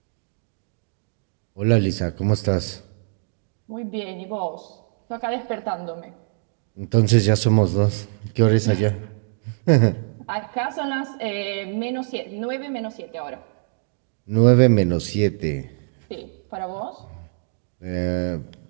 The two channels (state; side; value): silent; left; 63 dB below the other